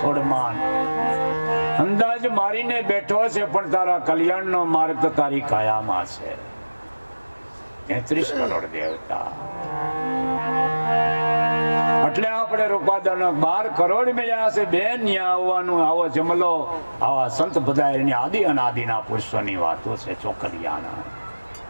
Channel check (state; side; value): inverted; both; correlation -1.00